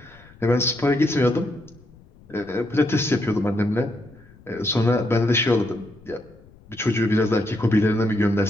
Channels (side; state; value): left; noise; rumble, 25 dB below the sound